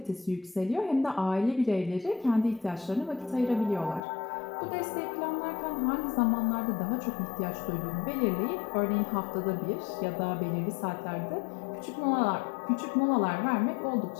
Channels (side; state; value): right; drops out; at 4.0 s